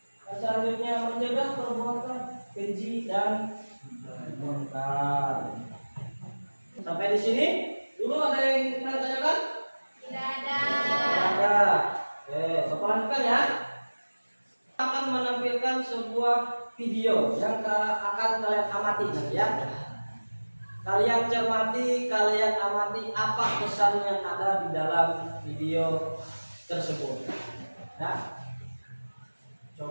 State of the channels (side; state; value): both; inverted; correlation -1.00